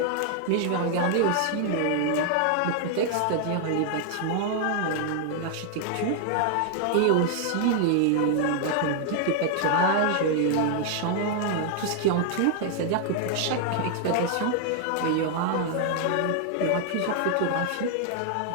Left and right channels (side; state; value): both; different; correlation 0.00